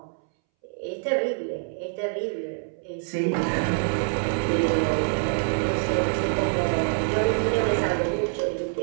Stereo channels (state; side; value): silent; left; 61 dB below the other